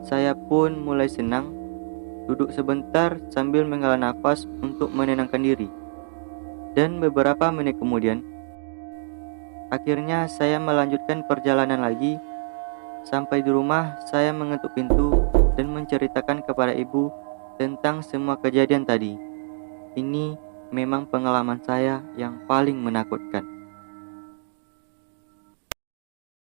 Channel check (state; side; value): silent; left; digital silence